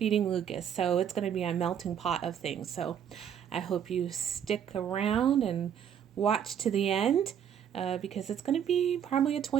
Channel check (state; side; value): quieter; left; 8.8 dB